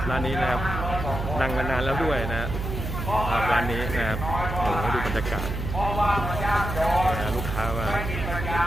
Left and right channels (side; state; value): right; noise; hum, 4 dB below the sound